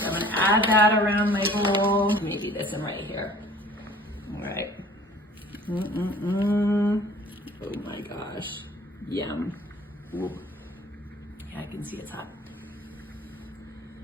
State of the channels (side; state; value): both; normal; correlation 0.50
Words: I'm gonna add that around my bowl. Maybe this one right here. All right. Oh my gosh. Yum. Ooh. Yeah, I can see it's hot.